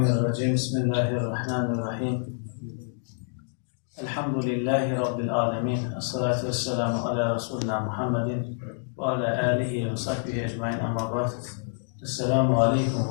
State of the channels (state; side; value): silent; right; digital silence